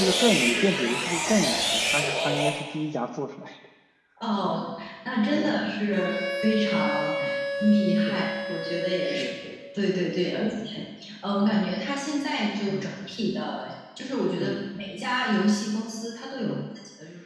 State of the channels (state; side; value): identical; both; correlation 1.00